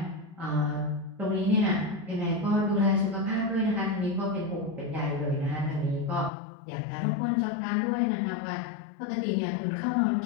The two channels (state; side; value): drops out; right; at 6.3 s